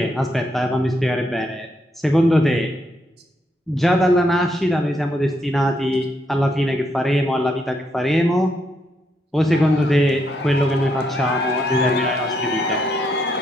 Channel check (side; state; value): both; normal; correlation 0.77